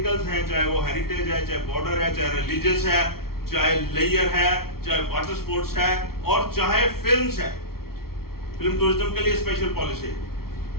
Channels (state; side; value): late; right; 0.94 ms